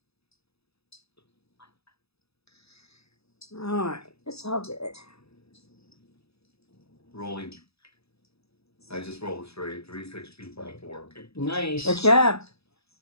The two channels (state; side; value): late; right; 0.78 ms